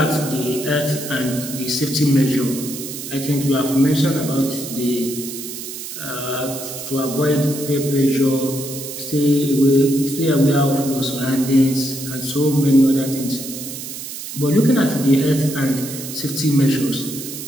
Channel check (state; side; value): noise; right; hiss, 9 dB below the sound